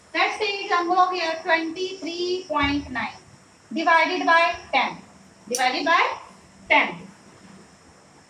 let's say example of here 23.9 divided by 10. Divided by 10.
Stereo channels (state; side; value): identical; both; correlation 1.00